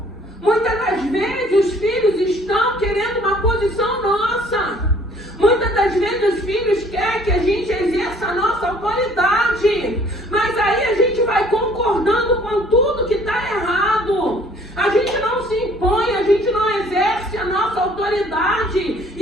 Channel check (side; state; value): both; normal; correlation 0.57